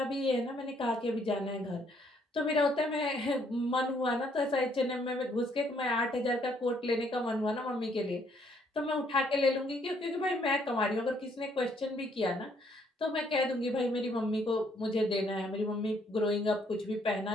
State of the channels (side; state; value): both; normal; correlation 0.68